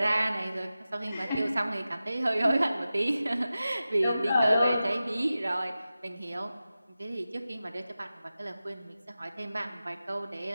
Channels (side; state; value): both; inverted; correlation -0.94